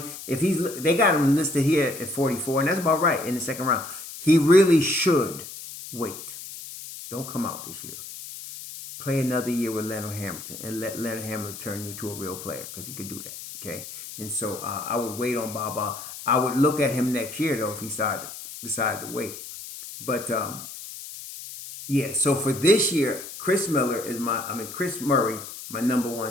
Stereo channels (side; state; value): left; noise; hiss, 12 dB below the sound